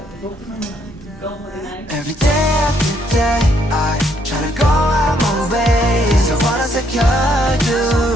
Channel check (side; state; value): both; normal; correlation 0.71